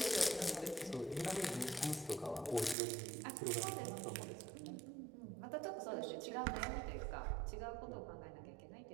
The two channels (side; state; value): left; drops out; at 2.8 s